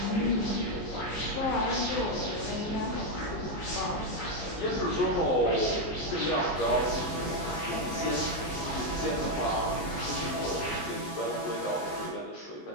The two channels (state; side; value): late; right; 19 ms